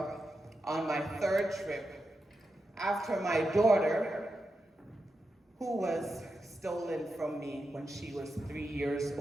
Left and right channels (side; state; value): both; normal; correlation 0.88